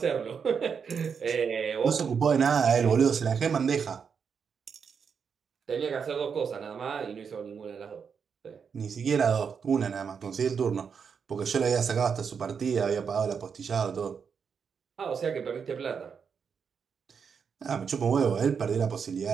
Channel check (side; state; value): left; quieter; 6.4 dB